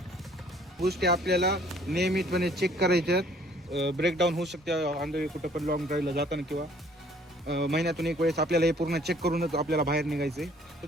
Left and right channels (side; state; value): both; normal; correlation 0.58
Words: गोष्टी आपल्याला नियमितपणे चेक करायच्यात. ब्रेकडाऊन होऊ शकते आंधळी कुठं पण लॉंग ड्राईव्हला जाताना किंवा महिन्यातून एक वेळेस आपल्याला हे पूर्ण चेक करूनच आपल्याला बाहेर निघायचं आहे.